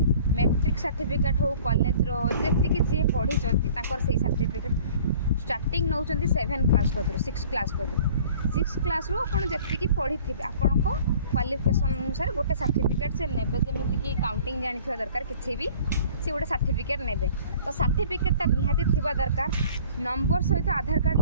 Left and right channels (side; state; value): both; inverted; correlation -0.49